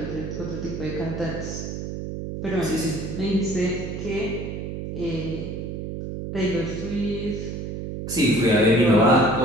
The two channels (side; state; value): right; noise; hum, 6 dB below the sound